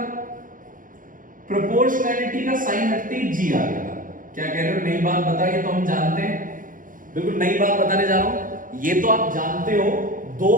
प्रोपोर्शनैलिटी का साइन हटते ही जी आ गया था। क्या कह रहे हो, नई बात बता, ये तो हम जानते हैं, बिल्कुल नई बात बताने जा रहा हूं। ये तो आप जानते हो, दो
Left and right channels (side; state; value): left; late; 0.39 ms